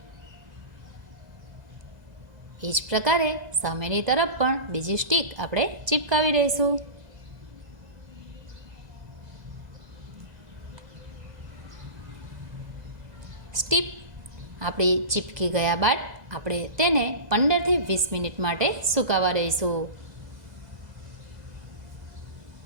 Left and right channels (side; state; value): left; late; 2.0 ms